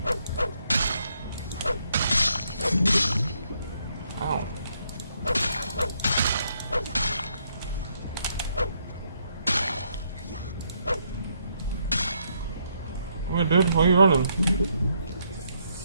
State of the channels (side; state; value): both; inverted; correlation -0.74